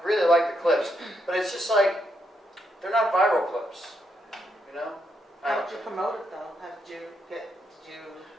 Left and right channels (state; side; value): normal; both; correlation 0.79